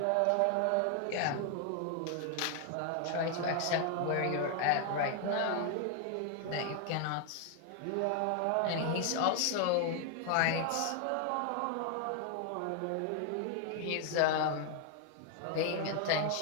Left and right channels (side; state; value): both; different; correlation 0.00